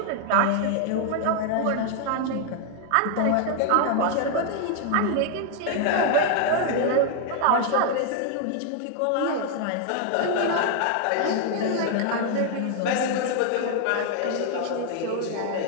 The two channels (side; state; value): both; different; correlation 0.00